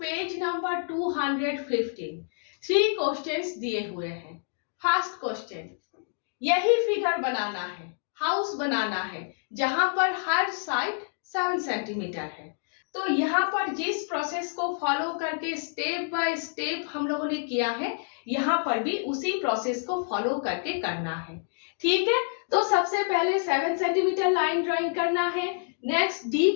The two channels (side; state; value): right; silent; digital silence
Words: नंबर 215। 3 क्वेश्चंस दिए हुए हैं। फर्स्ट क्वेश्चन, यही फिगर बनाना है, हाउस बनाना है जहां पर हर साइड 7 सेंटीमीटर है। तो यहाँ पर जिस प्रोसेस को फॉलो करके स्टेप बाय स्टेप हम लोगों ने किया है, यहाँ पर भी उसी प्रोसेस को फॉलो करके करना है। ठीक है, तो सबसे पहले 7 सेंटीमीटर लाइन ड्राइंग करना है। नेक्स्ट डी